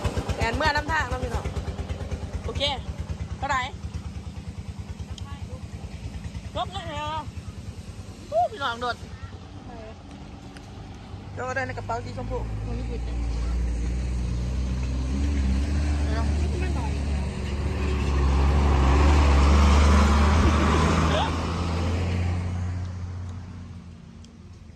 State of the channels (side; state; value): both; identical; correlation 1.00